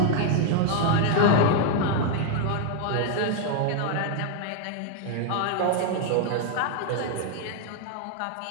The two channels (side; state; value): both; different; correlation 0.00